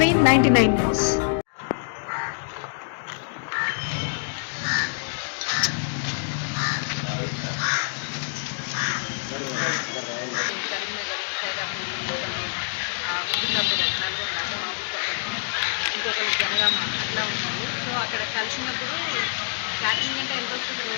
న్యూస్. కరీంనగర్, సైదాపూర్, ఒకళ్ళు ముకుందాపురం, నల్గొండ అంటే మా ఊరు పక్కన, ఇంకొకళ్ళు జనగామ అట్లా ఉన్నారు. సో అక్కడ కలిసినప్పుడు క్యాటరింగ్ అంటే ఎంత వస్తుంది,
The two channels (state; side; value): silent; right; digital silence